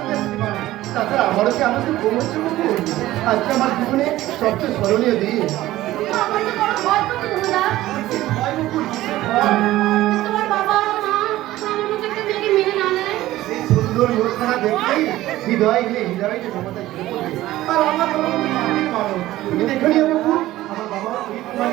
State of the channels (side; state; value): left; quieter; 15.8 dB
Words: তাছাড়া আমারও কি আমাদের পৌঁছে বকুল, আজকে আমার জীবনে সবচেয়ে স্মরণীয় দিন। আমার তো বড় ভয় করছে দাদা। তোমার বাবা মা আমার মতো একটা মেয়েকে মেনে না নেয়। এই সুন্দর মুখখানা দেখলেই হৃদয় নিয়ে হৃদয় যে ক্ষমতা ঝরে পড়বে। আর আমার বাবা তো মাটির মানুষ, তুমি দেখে নিও বকুল, আমার বাবা